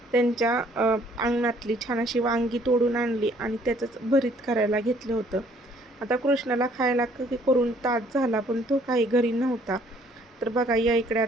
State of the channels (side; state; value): both; normal; correlation 0.61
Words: त्यांच्या अंगणातली छान अशी वांगी तोडून आणली आणि त्याचंच भरीत करायला घेतलं होतं. आता कृष्णाला खायला करून तास झाला, पण तो काही घरी नव्हता. तर बघा, या इकडे